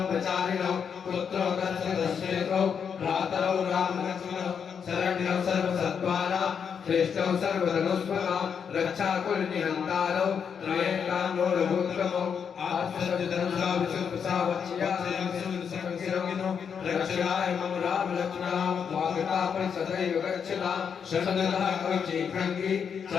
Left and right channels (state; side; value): quieter; right; 7.0 dB